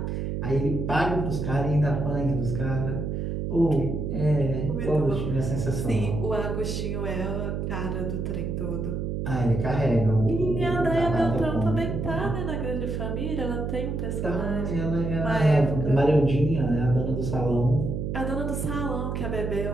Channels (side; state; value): right; noise; hum, 2 dB below the sound